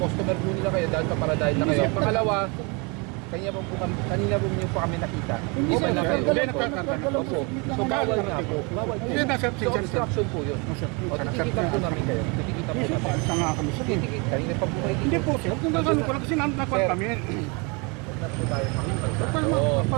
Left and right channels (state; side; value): quieter; left; 30.7 dB